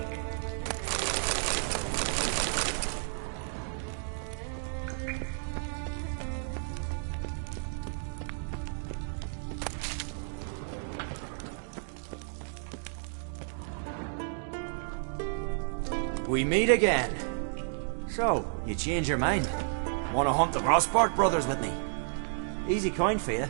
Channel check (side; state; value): left; silent; digital silence